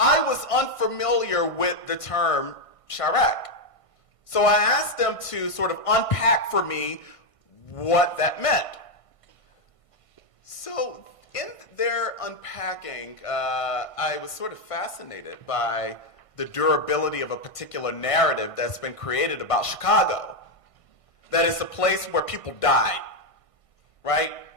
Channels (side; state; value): right; late; 1.5 ms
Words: was unfamiliar with the term Chirac. So I asked them to sort of unpack for me what that meant. So in their unpacking, I was sort of fascinated by the durability of a particular narrative that's been created about Chicago. That it's a place where people died, right?